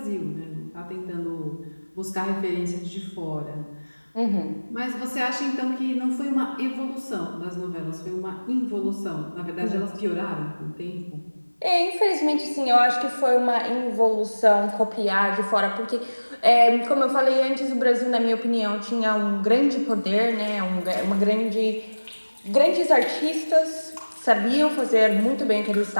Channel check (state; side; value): inverted; both; correlation -1.00